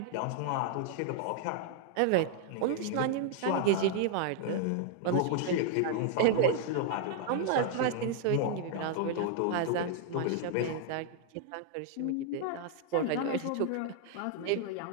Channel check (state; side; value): different; both; correlation 0.00